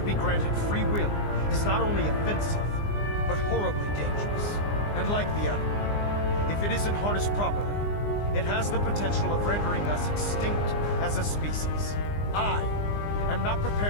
be granted free will is not only offensive, but horribly dangerous. And like the atom, if it isn't harnessed properly, it has the potential of rendering us extinct as a species. I am not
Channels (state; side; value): late; right; 20 ms